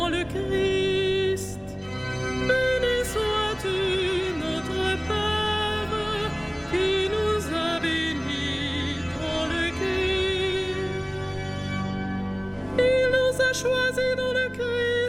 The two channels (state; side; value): identical; both; correlation 1.00